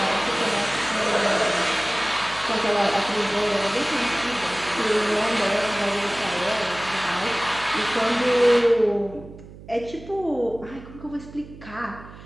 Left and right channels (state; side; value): noise; right; hum, 17 dB below the sound